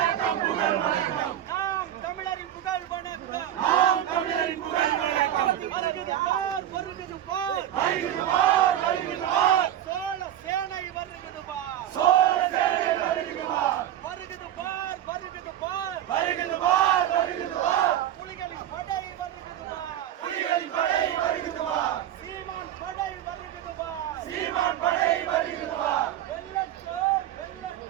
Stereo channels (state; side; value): quieter; left; 11.5 dB